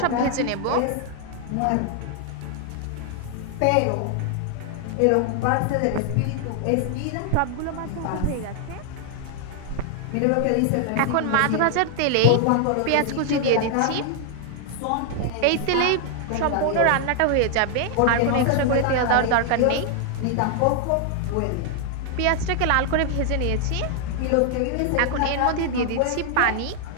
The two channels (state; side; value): different; both; correlation 0.00